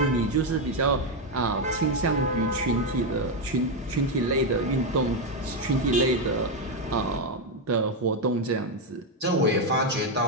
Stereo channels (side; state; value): both; normal; correlation 0.05